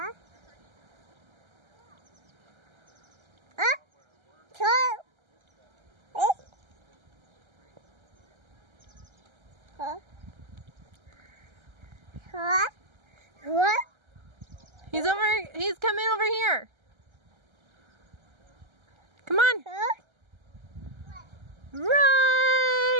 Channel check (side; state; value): left; late; 1.3 ms